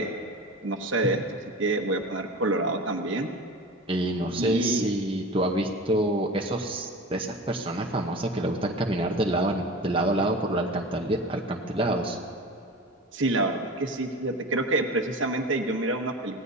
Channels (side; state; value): both; normal; correlation 0.33